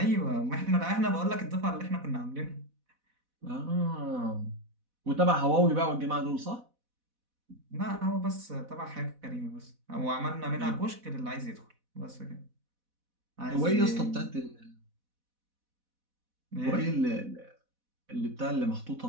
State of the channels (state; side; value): late; left; 4.1 ms